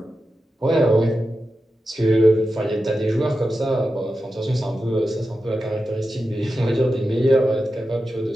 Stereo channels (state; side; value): normal; both; correlation 0.91